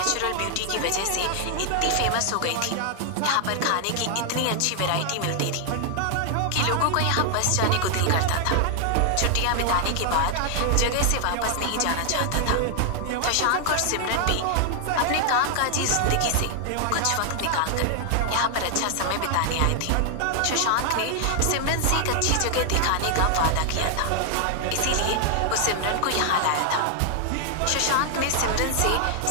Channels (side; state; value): both; different; correlation 0.00